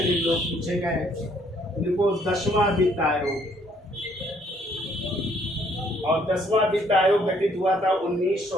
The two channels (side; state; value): both; normal; correlation 0.65